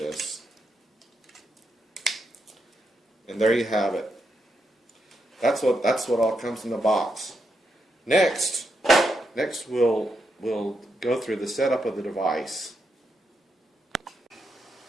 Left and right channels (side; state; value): both; normal; correlation 0.82